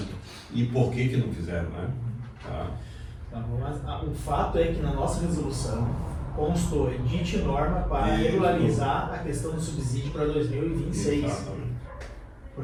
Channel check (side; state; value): both; identical; correlation 1.00